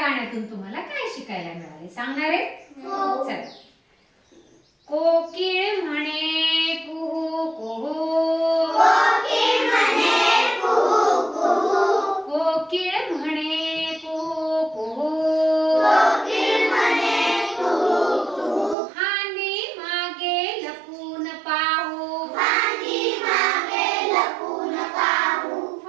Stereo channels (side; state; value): left; drops out; at 18.8 s